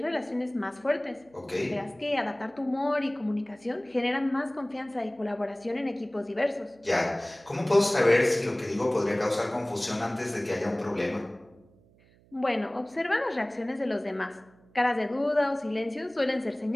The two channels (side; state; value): right; noise; hum, 29 dB below the sound